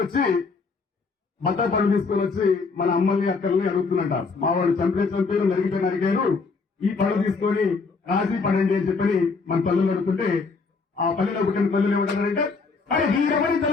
బట్టల పనులు తీసుకొని వచ్చి మన అమ్మల్ని అక్కల్ని అడుగుతున్నట. మా వాడు చంపారు నరిగారు, ఈ పనులు తీసుకొని రాసి పడండి అని చెప్పని మన పల్లెలు అడుగుతుంటే ఆ పల్లెలో పుట్టిన పల్లెలు ఏమంటారంటే అరే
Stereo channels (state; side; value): quieter; right; 4.5 dB